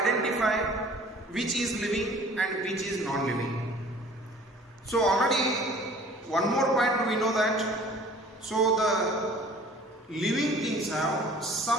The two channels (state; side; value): normal; both; correlation 0.49